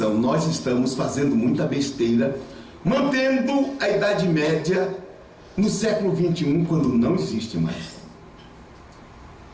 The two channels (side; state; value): both; identical; correlation 1.00